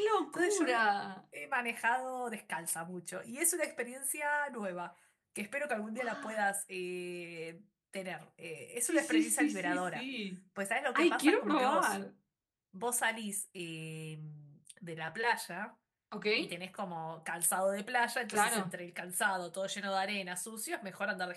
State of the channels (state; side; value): identical; both; correlation 1.00